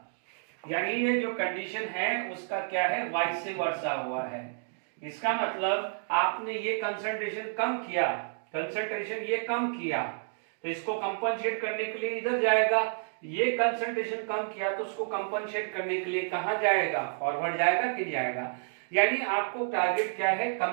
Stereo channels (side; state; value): left; silent; digital silence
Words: यानी ये जो कंडीशन है उसका क्या है, वाइस वर्सा हुआ है। इसका मतलब आपने ये कंसंट्रेशन कम किया, तो इसको कंपनसेट करने के लिए इधर जाएगा। ये कंसंट्रेशन कम किया तो उसको कंपनसेट करने के लिए कहां जाएगा, फॉरवर्ड जाएगा कि जाएगा। यानी आपको टारगेट क्या है,